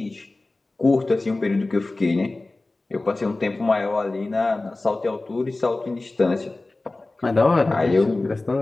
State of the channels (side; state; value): right; quieter; 3.1 dB